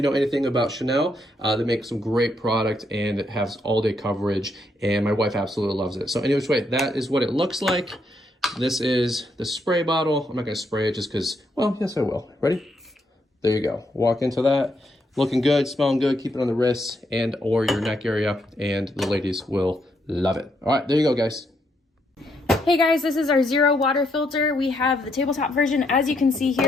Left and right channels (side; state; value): both; normal; correlation 0.76